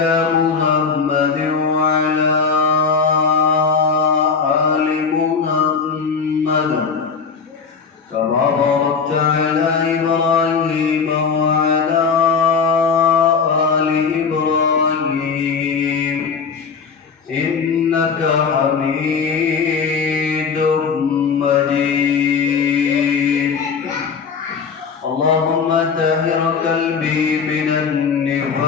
محمد وعلى آل محمد كما باركت على إبراهيم وعلى آل إبراهيم إنك حميد مجيد. اللهم طهر قلبي من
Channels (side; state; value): right; quieter; 5.6 dB